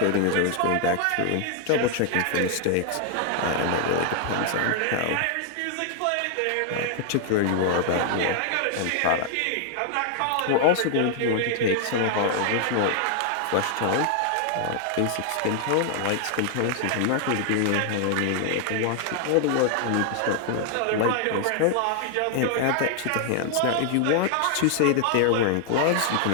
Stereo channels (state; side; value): different; both; correlation 0.00